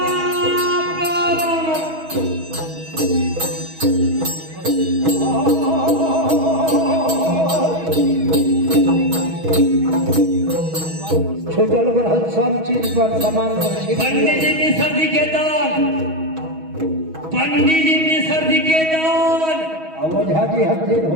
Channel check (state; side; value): late; left; 6.2 ms